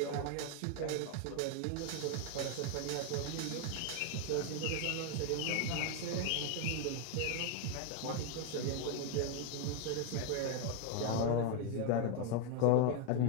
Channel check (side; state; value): both; different; correlation 0.01